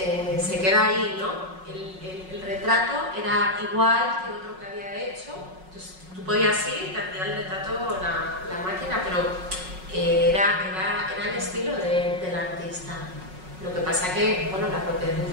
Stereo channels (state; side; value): late; left; 5.4 ms